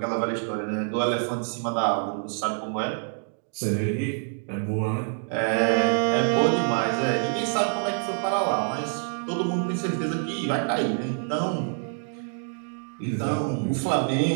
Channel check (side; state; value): left; silent; 61 dB below the other